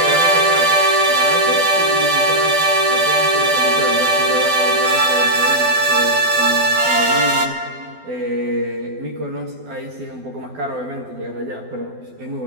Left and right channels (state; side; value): late; left; 12 ms